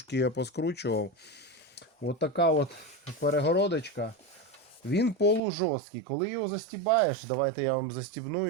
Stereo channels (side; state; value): left; drops out; at 5.4 s